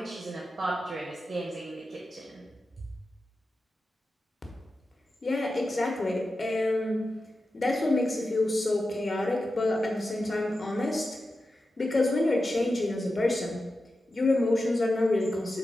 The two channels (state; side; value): normal; both; correlation 0.91